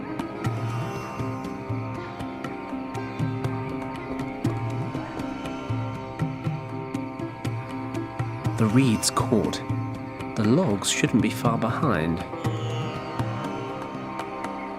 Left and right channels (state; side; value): identical; both; correlation 1.00